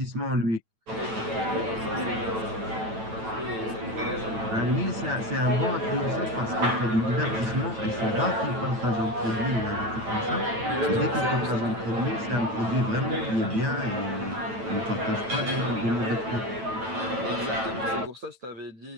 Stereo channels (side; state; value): left; late; 9.1 ms